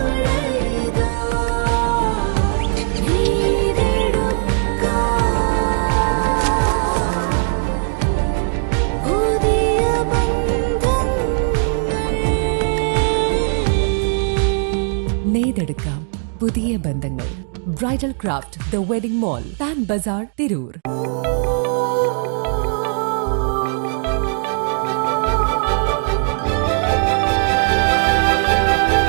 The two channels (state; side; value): silent; left; 57 dB below the other